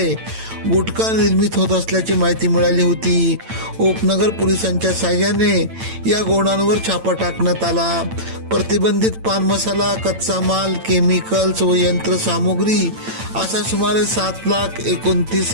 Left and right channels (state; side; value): late; left; 8.9 ms